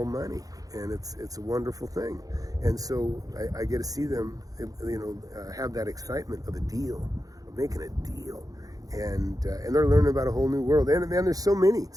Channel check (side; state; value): left; late; 0.17 ms